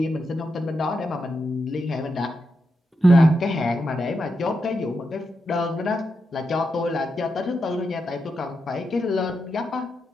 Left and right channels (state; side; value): normal; both; correlation 0.86